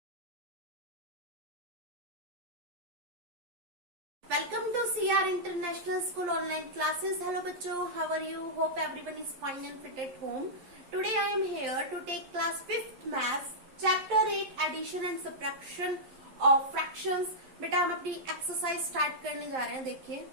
to CR International School online classes. Hello bachcho, how are you? Hope everyone is fine and fit at home. Today I am here to take class 5th maths chapter 8 addition and subtraction of fractions. बेटा हम अपनी एक्सरसाइज स्टार्ट करने जा रहे हैं. देखिए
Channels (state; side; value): late; left; 11 ms